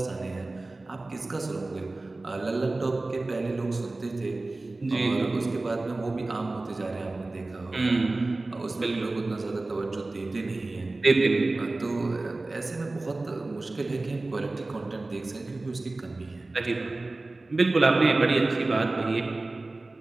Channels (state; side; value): quieter; left; 3.1 dB